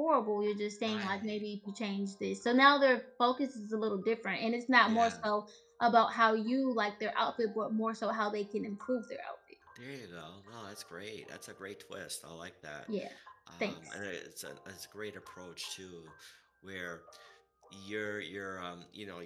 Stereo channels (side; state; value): both; identical; correlation 1.00